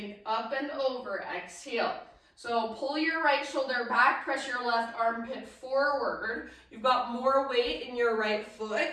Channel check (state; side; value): identical; both; correlation 1.00